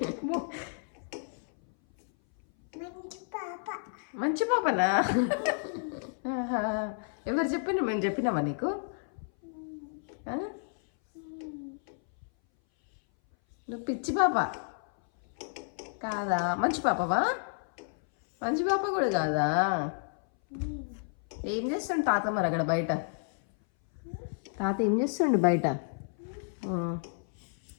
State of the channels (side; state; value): right; silent; 57 dB below the other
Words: మంచి పాపనా? ఎవరు చెప్పిన? మేము చెప్పినామా నీకు? నువ్వు పిచ్చి పాప కాదా? మంచి పాపవా? మంచి పాప కూడా కాదా? ఏం చేస్తుండు తాత మరి అక్కడ బయట? తాత ఏం చేస్తుండు బయట?